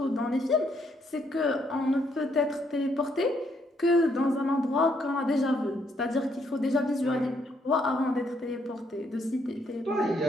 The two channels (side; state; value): both; normal; correlation 0.72